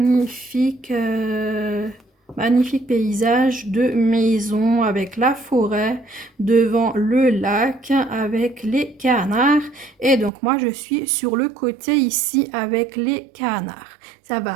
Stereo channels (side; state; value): left; drops out; at 10.3 s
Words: paysage de maison avec la forêt devant le lac avec les canards. Et donc moi je suis sur le côté ici avec les canards. Ça